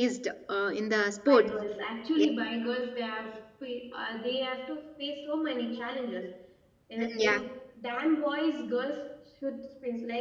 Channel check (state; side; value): identical; both; correlation 1.00